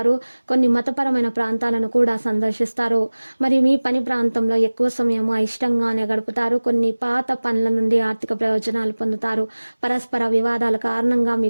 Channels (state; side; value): inverted; both; correlation -1.00